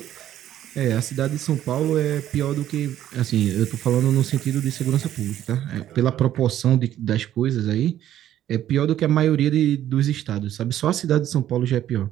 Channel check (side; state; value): left; quieter; 11.9 dB